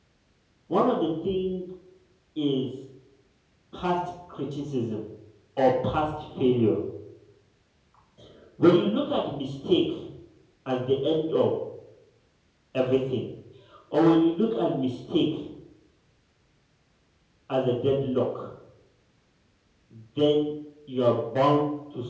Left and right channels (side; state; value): both; identical; correlation 1.00